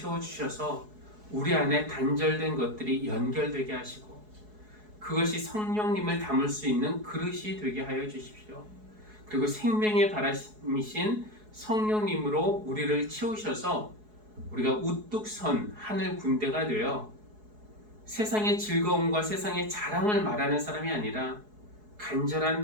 우리 안에 단절된 것들이 연결되게 하시고 그것이 성령님을 담을 수 있는 그릇이 되게 하여 주십시오. 그리고 생명의 바람이신 성령님으로 우리를 채우셔서 우리가 우뚝 선 하늘 군대가 되어 세상의 즐거움과 세상의 자랑을 말하는 사람이 아니라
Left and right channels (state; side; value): late; left; 4.7 ms